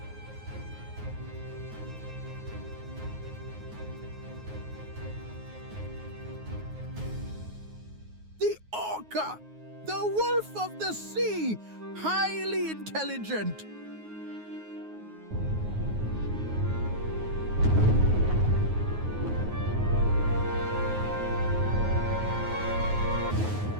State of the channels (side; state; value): left; late; 9.4 ms